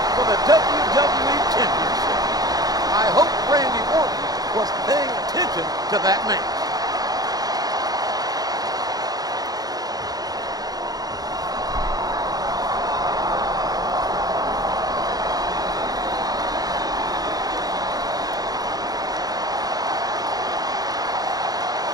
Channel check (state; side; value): late; left; 0.19 ms